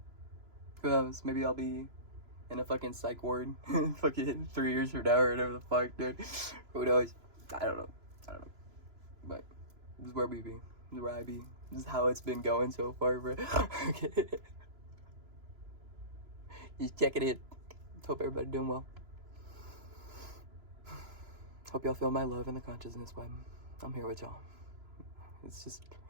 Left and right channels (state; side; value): late; left; 3.0 ms